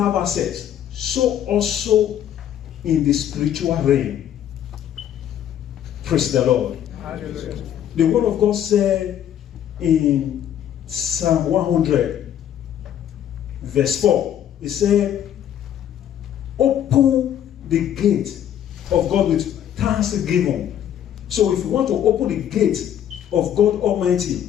access. So also in the spiritual realm. Praise the Lord. Hallelujah. The word of God said in Psalm 100, verse 4, it said, open the gate of God with thanksgiving. So if you want to open the gate of God Almighty,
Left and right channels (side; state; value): right; quieter; 10.3 dB